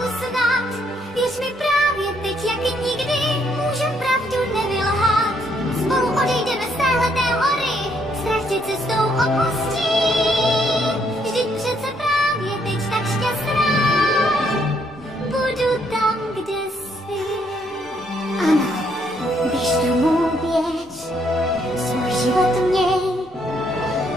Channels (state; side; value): normal; both; correlation 0.71